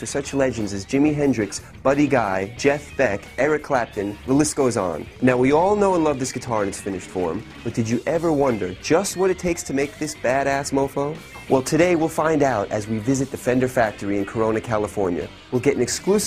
such legends as Jimi Hendrix, Buddy Guy, Jeff Beck, Eric Clapton, the list goes on. Now, we all know and love this guitar in its finished form, but did you ever wonder just what it takes to make this badass mofo? Well, today we'll find out as we visit the Fender factory in Corona, California. We'll get an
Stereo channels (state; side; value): identical; both; correlation 1.00